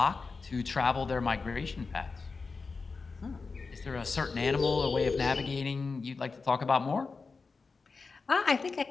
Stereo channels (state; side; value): quieter; right; 4.5 dB